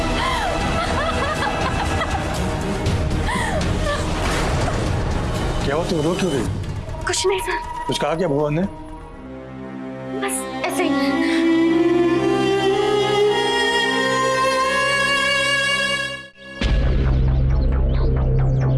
क्या हो, तुम रो क्यों रही? कुछ नहीं सर, कुछ कहा क्या भुवन ने? बस ऐसे ही।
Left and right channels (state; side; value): identical; both; correlation 1.00